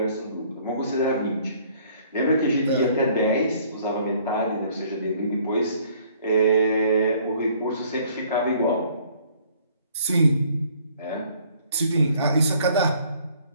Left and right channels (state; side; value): inverted; both; correlation -0.59